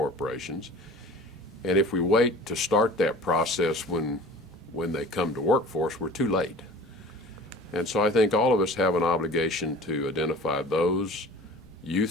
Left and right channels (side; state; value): both; normal; correlation 0.42